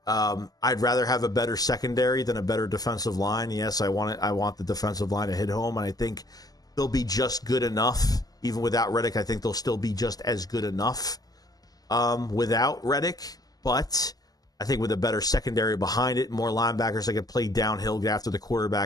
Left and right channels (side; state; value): right; late; 0.18 ms